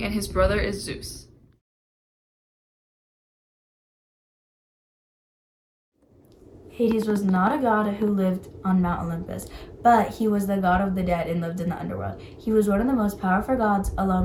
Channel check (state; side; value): identical; both; correlation 1.00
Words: and his brother is Zeus. Hades was not a god who lived on Mount Olympus, but he was the god of the dead and lived in the underworld. He was one of the most powerful gods